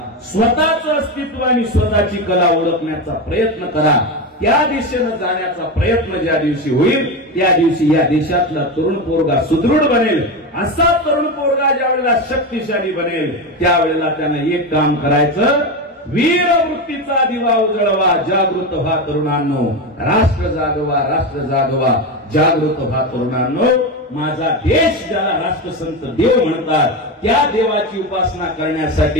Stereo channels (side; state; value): both; normal; correlation 0.17